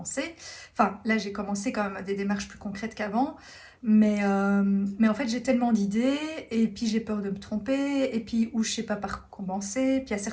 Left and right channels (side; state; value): both; identical; correlation 1.00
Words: Enfin, là, j'ai commencé quand même des démarches plus concrètes qu'avant, mais en fait, j'ai tellement d'idées et puis j'ai peur de me tromper et puis où je sais pas par où commencer. Puis il y a